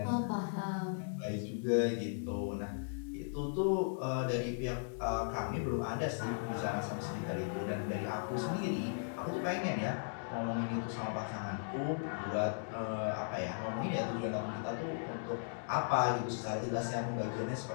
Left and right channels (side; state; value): right; silent; digital silence